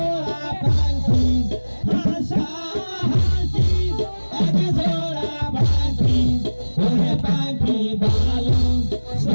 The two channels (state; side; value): inverted; both; correlation -1.00